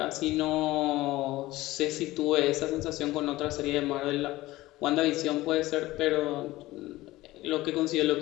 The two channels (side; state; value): right; quieter; 17.9 dB